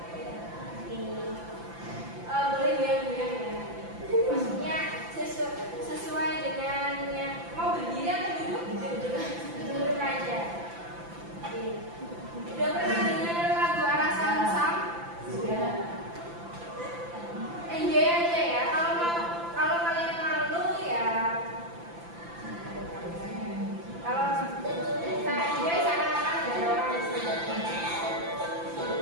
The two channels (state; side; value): late; left; 5.9 ms